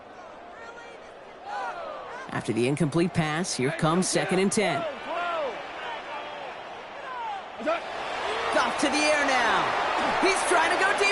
After the incomplete pass, here comes 2nd and 10. Goff to the air now. He's trying to go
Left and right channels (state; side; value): identical; both; correlation 1.00